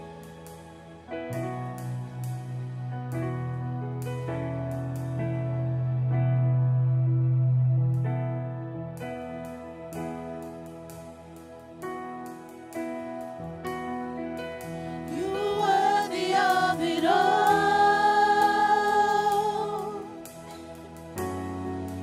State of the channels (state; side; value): identical; both; correlation 1.00